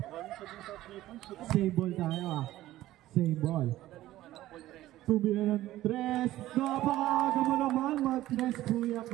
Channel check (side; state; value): left; quieter; 15.1 dB